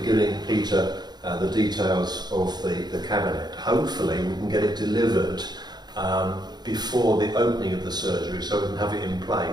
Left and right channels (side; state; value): left; late; 0.20 ms